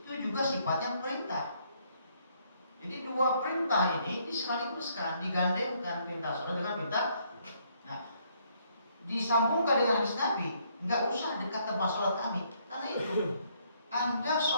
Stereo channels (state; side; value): inverted; both; correlation -0.69